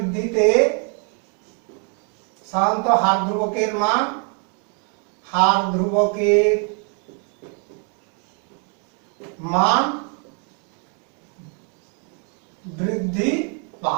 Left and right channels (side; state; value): left; quieter; 39.8 dB